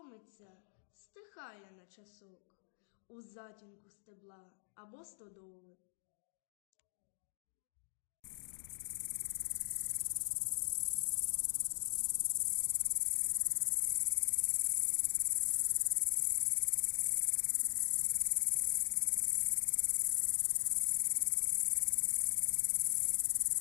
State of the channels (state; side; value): silent; right; digital silence